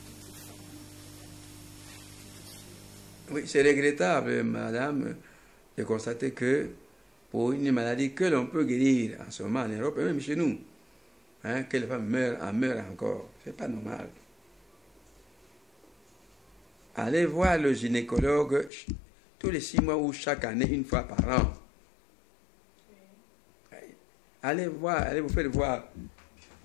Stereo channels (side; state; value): right; drops out; at 18.7 s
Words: Oui, c'est regrettable, madame, de constater que pour une maladie que l'on peut guérir en ce moment en Europe, et même chez nous, que les femmes meurent encore. C'est pas normal. Allez voir le gynécologue tous les 6 mois ou chaque année, 1 fois par an. Allez vous faire voir.